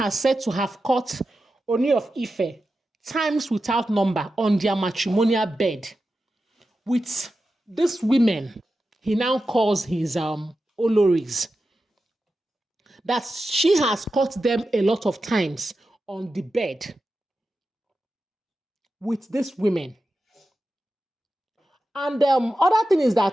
said to have caught Ooni of Ife times without number on their matrimonial bed with these women he now calls his Oloris. That she has caught them a lot of times on the bed with these women. And other thing is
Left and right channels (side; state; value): both; normal; correlation 0.91